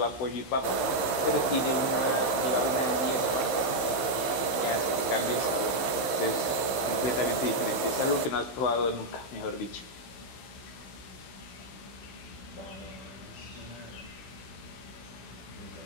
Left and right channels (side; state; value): right; late; 15 ms